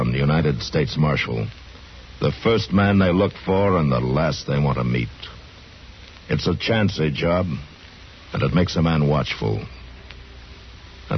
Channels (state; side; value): identical; both; correlation 1.00